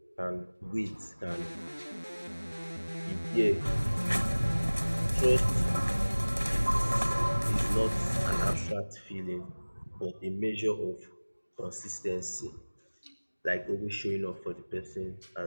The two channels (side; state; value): both; inverted; correlation -1.00